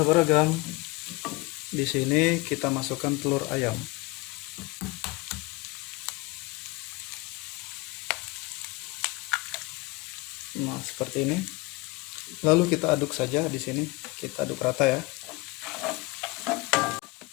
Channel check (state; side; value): quieter; right; 23.4 dB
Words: di sini kita masukkan telur ayam. Nah, seperti ini. Lalu kita aduk saja di sini, kita aduk rata ya.